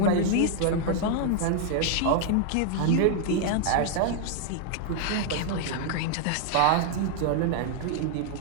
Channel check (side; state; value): both; different; correlation 0.00